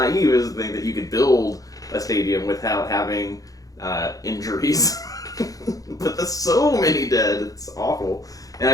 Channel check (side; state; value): right; late; 0.17 ms